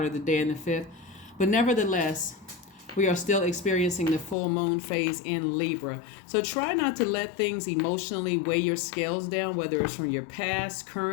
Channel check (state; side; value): drops out; right; at 4.4 s